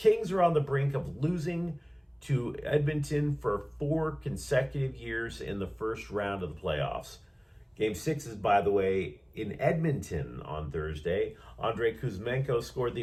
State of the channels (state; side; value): identical; both; correlation 1.00